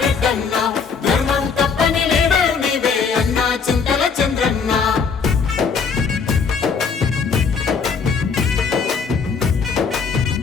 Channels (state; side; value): quieter; right; 5.7 dB